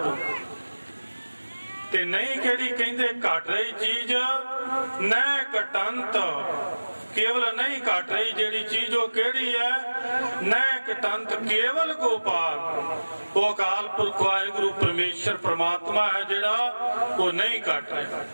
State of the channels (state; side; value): inverted; both; correlation -1.00